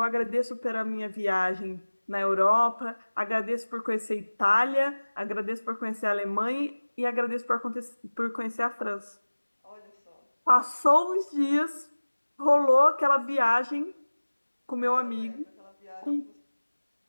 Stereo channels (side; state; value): both; inverted; correlation -1.00